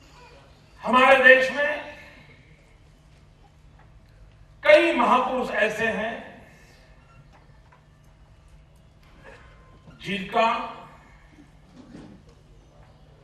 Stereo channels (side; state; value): both; identical; correlation 1.00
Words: हमारे देश में कई महापुरुष ऐसे हैं जिनका